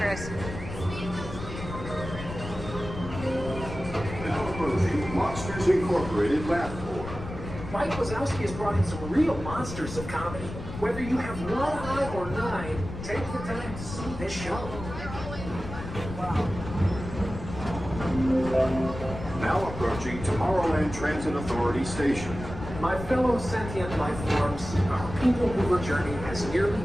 Now approaching Monsters Incorporated Lab 4. Mike Wazowski has brought in some real monsters of comedy. Whether you have one eye or 9, take the time to see this show. Now approaching Tomorrowland Transit Authority Station. My fellow sentient life forms, our Peoplemover journey has nearly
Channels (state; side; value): noise; left; rumble, 9 dB below the sound